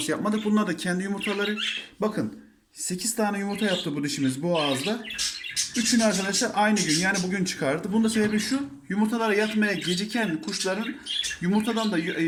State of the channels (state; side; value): identical; both; correlation 1.00